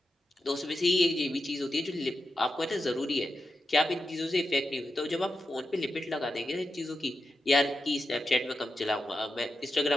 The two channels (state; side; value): normal; both; correlation 0.89